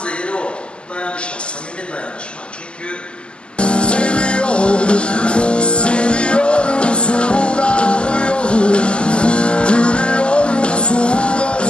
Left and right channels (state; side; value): late; right; 0.051 ms